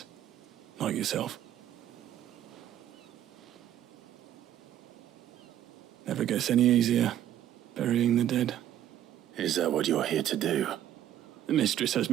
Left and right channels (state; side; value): quieter; left; 11.6 dB